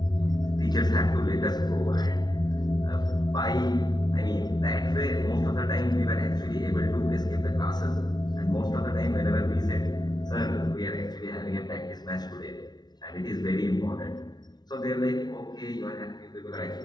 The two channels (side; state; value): right; late; 0.20 ms